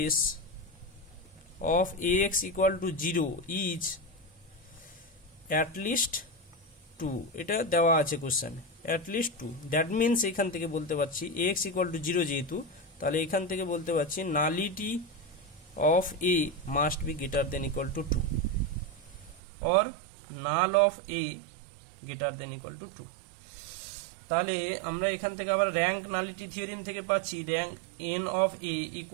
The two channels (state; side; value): drops out; left; at 19.4 s